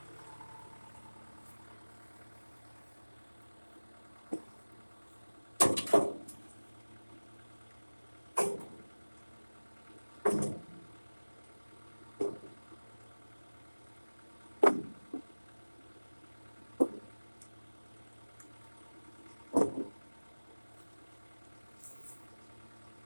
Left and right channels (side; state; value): both; inverted; correlation -1.00